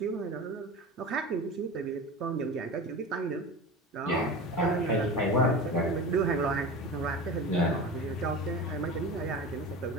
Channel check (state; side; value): normal; both; correlation 0.30